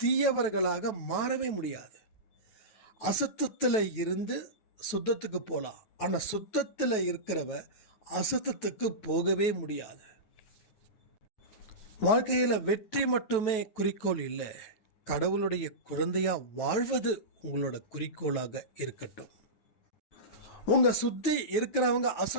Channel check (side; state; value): right; late; 9.2 ms